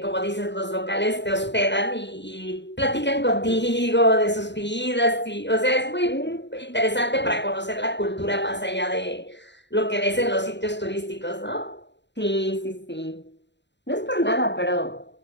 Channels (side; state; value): right; late; 0.52 ms